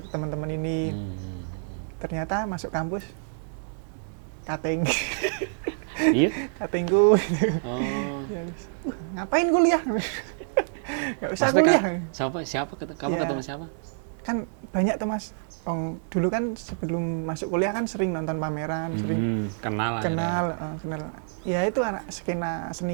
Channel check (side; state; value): left; silent; digital silence